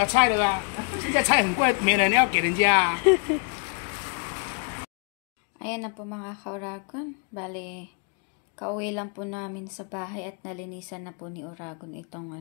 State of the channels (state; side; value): quieter; right; 37.9 dB